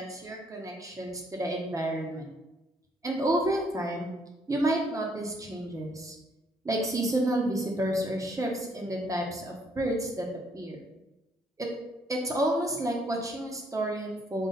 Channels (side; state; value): both; normal; correlation 0.69